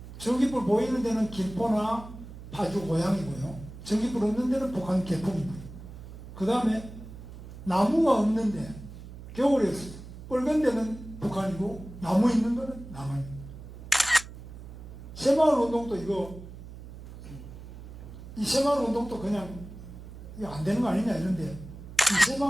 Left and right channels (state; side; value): noise; right; hum, 14 dB below the sound